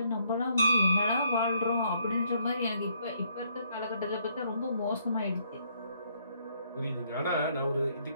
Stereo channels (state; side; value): inverted; both; correlation -0.70